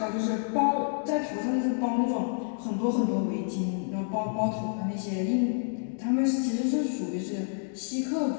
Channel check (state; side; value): silent; right; digital silence